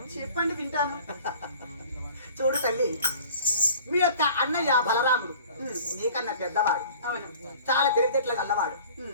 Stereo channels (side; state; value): both; inverted; correlation -0.47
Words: చెప్పండి వింటాను. చూడు తల్లి మీ యొక్క అన్నయ్య బలరాముడు నీకన్నా పెద్దవాడు అవును. చాలా తెలివితేటలు గల్లవాడు